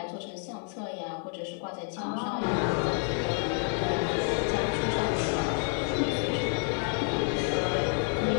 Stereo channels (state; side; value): quieter; right; 40.0 dB